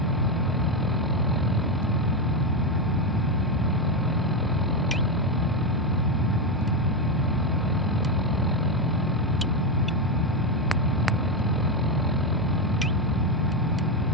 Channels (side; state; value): both; normal; correlation 0.09